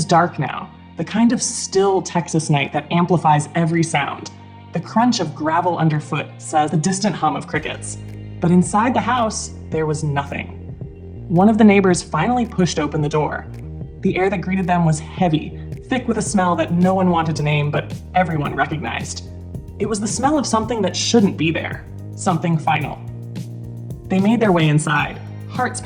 dark now, the kind of still Texas night that amplifies every sound. The crunch of gravel underfoot says the distant hum of crickets. But inside the house, there was nothing. One of the neighbors finally pushed open the door. The air that greeted them was heavy, thick with a smell that no one wanted to name, but everyone recognized. It was the smell of something that shouldn't be there, something final. They made their way inside, hearts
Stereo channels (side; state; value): both; identical; correlation 1.00